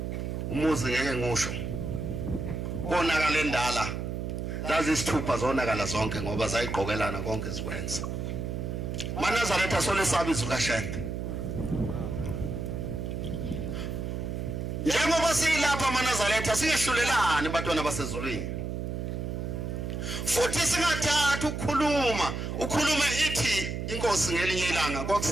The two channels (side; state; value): right; noise; hum, 4 dB below the sound